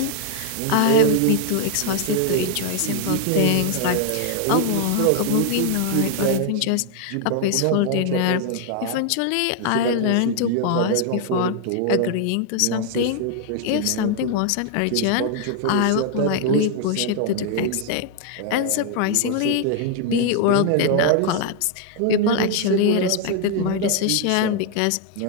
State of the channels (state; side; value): different; both; correlation 0.00